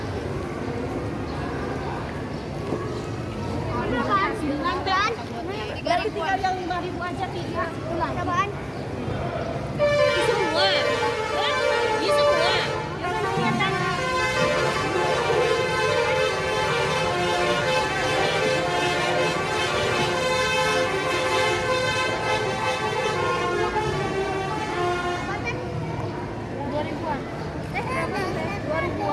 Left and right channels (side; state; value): both; identical; correlation 1.00